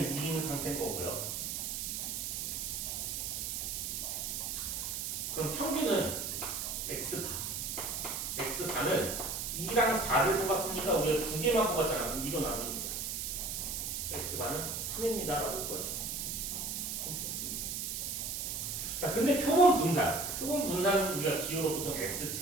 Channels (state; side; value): noise; right; hiss, 3 dB below the sound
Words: 2인 상태인 거고요. 그럼 평균은 x바. x바는 2랑 4를 뽑았으니까 우리가 2개만 뽑았잖아. 2로 나눕니다. x바는 3입니다. 라고 볼 거지. 자, 근데 표본 분산은 우리가 기호로 보통